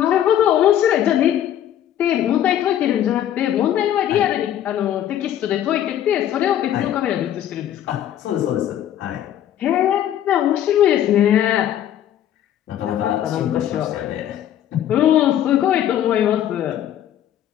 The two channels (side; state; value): right; quieter; 11.1 dB